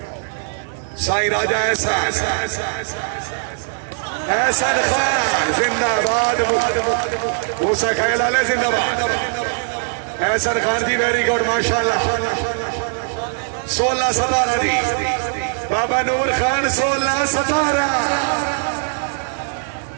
साई राजा एहसन खान जिंदाबाद मूसा खैलाले जिंदाबाद एहसन खान जी वेरी गुड माशाल्लाह 16-17 जी बाबा नूर खान 16-17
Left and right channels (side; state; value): left; silent; digital silence